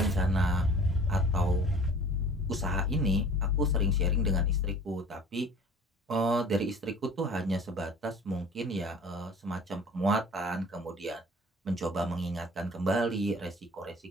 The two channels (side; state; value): both; normal; correlation 0.46